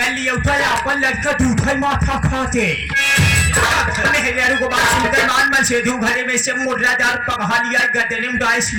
लिया उठा अपन लड़का दूठा माथा खाते। मेहरारू को बात सुनकर मान मन सेधु घरे में से मुर्रादार पकहा लिया गदने में डाइस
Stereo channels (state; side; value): identical; both; correlation 1.00